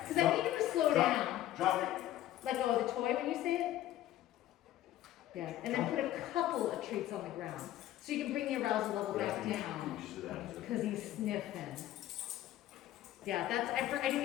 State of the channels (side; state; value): right; quieter; 13.6 dB